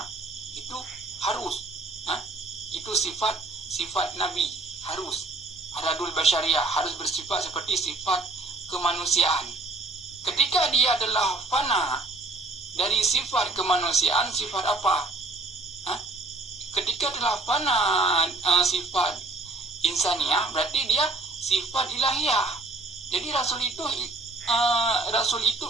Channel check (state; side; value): quieter; left; 3.0 dB